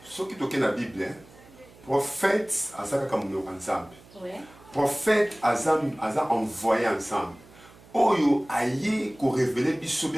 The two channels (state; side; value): noise; right; hum, 24 dB below the sound